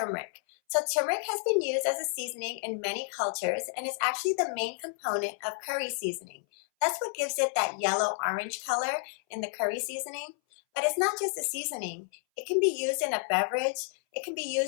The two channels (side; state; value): right; silent; 57 dB below the other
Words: So turmeric has been used as a seasoning in many cultures, and it's actually the main component of curry seasoning. That's what gives it that yellow-orange color in the curry seasoning. But it's not just a seasoning. It can be used in a beverage. It can be